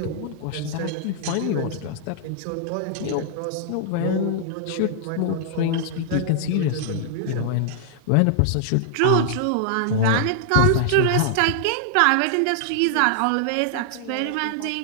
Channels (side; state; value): both; different; correlation -0.01